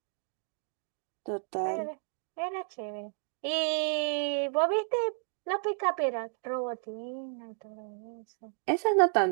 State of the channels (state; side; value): silent; left; digital silence